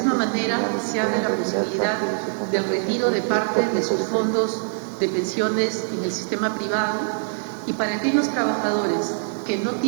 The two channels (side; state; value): left; silent; 56 dB below the other